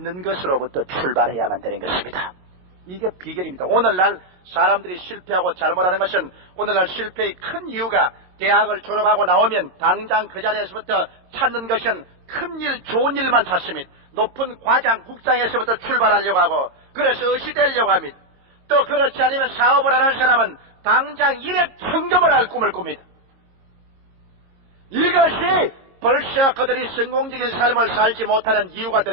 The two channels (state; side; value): late; left; 22 ms